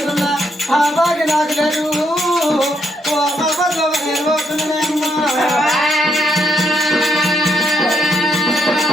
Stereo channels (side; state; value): both; normal; correlation 0.76